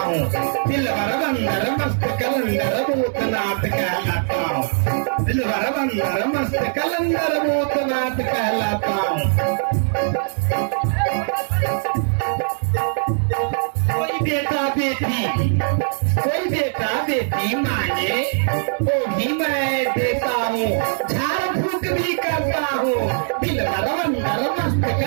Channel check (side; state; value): left; silent; 62 dB below the other